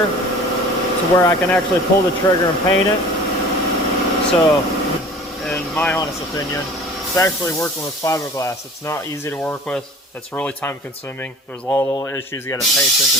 to where I can actually pull the trigger and paint it. So, in my honest opinion, especially working with fiberglass, it's not easy to work with. It's really time consuming. There's a lot of little issues you got to pay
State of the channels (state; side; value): normal; both; correlation 0.43